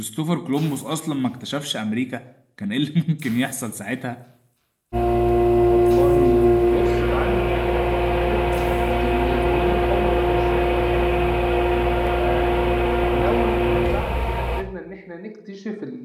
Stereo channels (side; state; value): both; identical; correlation 1.00